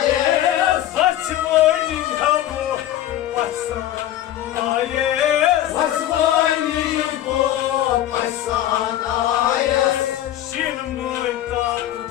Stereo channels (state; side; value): quieter; right; 12.8 dB